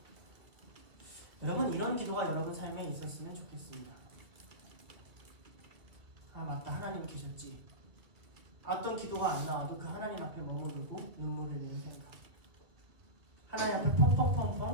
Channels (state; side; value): late; left; 2.1 ms